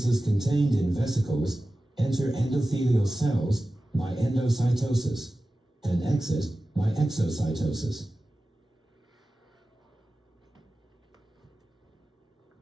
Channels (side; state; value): both; normal; correlation 0.95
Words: contained in vesicles enter endothelial cells by endocytosis and exit by exocytosis.